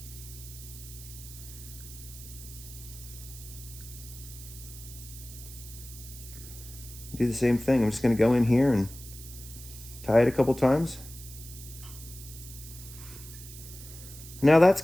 Do the same thing. I'm just gonna go in here and tie it a couple times. Now that's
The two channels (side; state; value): right; noise; hiss, 15 dB below the sound